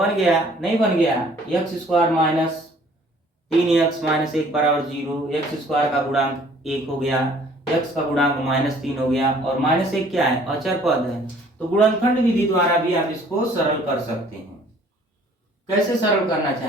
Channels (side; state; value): both; normal; correlation 0.56